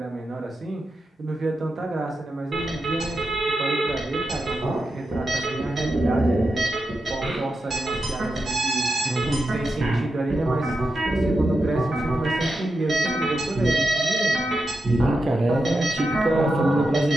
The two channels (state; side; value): normal; both; correlation 0.88